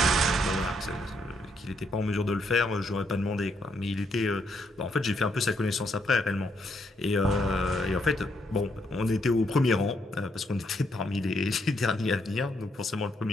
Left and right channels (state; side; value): normal; both; correlation 0.75